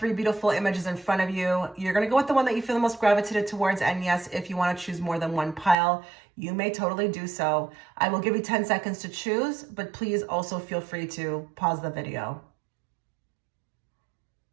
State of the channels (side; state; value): left; drops out; at 5.8 s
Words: beautiful images in front of you. You're going to go with the one that you feel the most gravitated towards, and yes, if you want to choose more than one pile, you may totally do so. I will give you 10 seconds to choose, but please also feel free to pause the video.